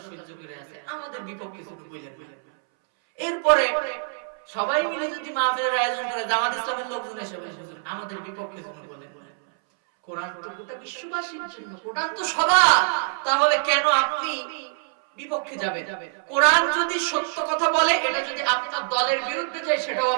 সহ্য করে আছে, আমাদের বিপক্ষে শুধু বলেন না। এরপরে সবাই মিলে যদি মাহফিলের আয়োজন করে, জামাত ইসলামের লোকজন এসে বলে, হুজুর আমাদের বিপক্ষে শুধু বলেন না। কোরআন তো গোটা বিশ্ববাসীর জন্য, কোরআন তো সবার, তাহলে কেন আপনি বিপক্ষে যাবেন? কোরআন যদি সত্য কথা বলে, এটা যদি আপনার দলের বিরুদ্ধে যায়, সেটাও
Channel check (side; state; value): left; silent; 62 dB below the other